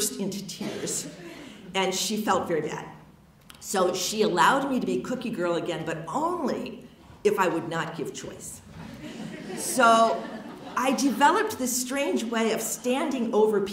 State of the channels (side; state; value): both; identical; correlation 1.00